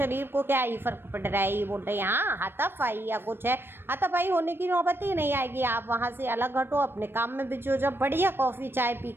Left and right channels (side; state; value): left; late; 0.10 ms